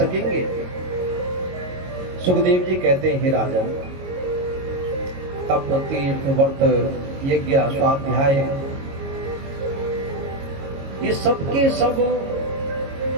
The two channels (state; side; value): late; left; 22 ms